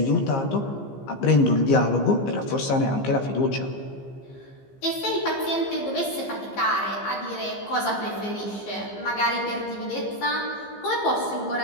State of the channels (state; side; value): late; right; 15 ms